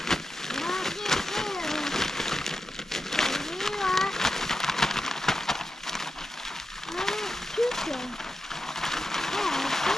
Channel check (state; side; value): normal; both; correlation 0.90